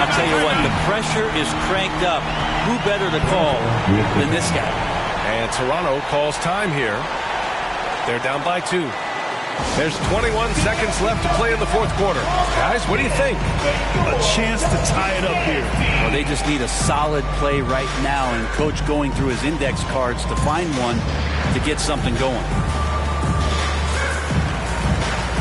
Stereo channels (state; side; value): identical; both; correlation 1.00